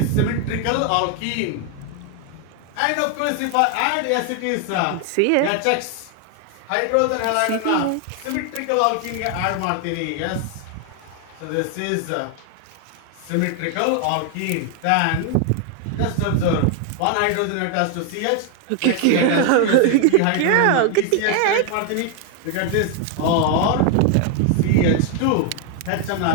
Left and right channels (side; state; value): both; different; correlation 0.00